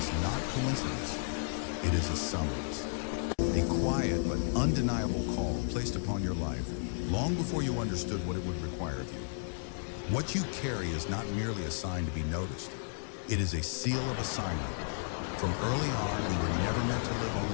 not coincidence. It is a summons. A quiet but undeniable call placed upon your life long before you understood what it would require of you. What you carry is not merely a sign to be noticed. It is a seal of assignment. From early on, you were never meant to live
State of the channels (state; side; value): silent; right; digital silence